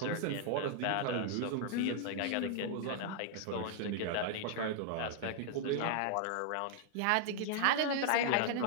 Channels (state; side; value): different; both; correlation 0.00